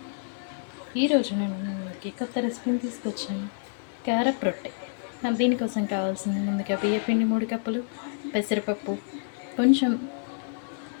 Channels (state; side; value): silent; right; digital silence